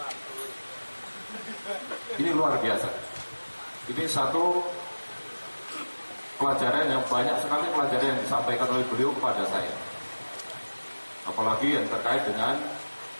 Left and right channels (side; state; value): both; inverted; correlation -1.00